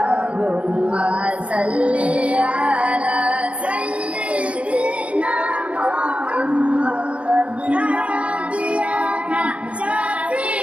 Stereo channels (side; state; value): left; late; 0.062 ms